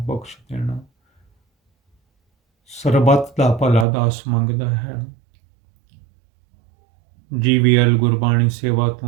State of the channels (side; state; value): left; drops out; at 3.9 s